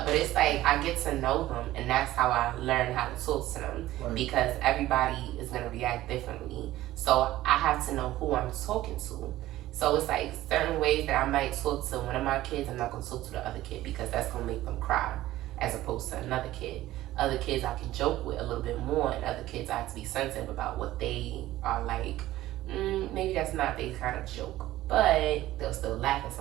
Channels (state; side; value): quieter; left; 15.4 dB